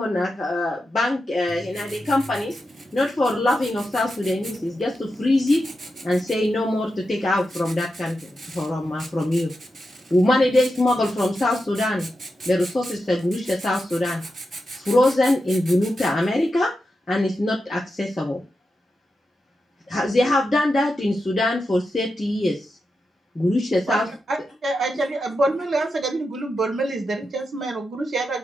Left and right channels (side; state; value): both; normal; correlation 0.88